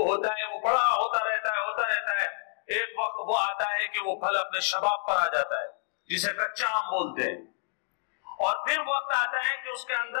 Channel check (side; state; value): right; silent; digital silence